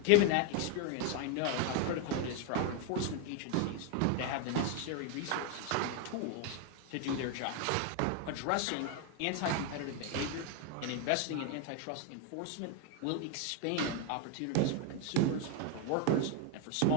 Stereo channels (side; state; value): both; different; correlation 0.01